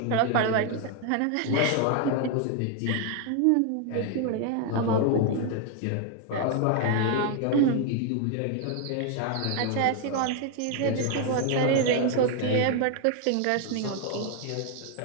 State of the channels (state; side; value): different; both; correlation 0.01